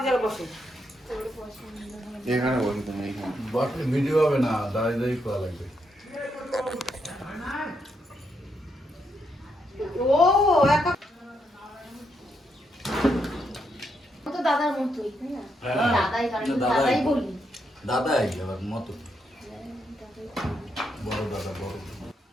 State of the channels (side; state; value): both; normal; correlation 0.79